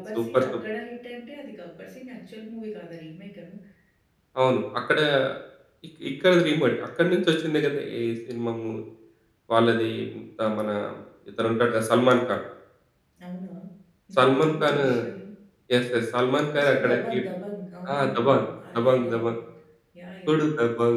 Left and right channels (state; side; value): identical; both; correlation 1.00